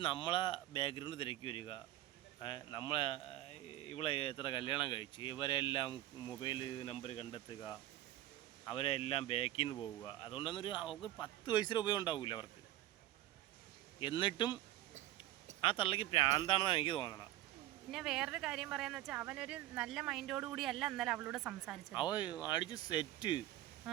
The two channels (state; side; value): quieter; left; 14.7 dB